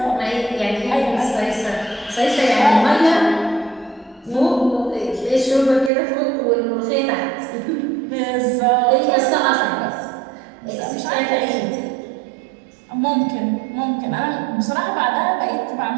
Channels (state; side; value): drops out; left; at 5.9 s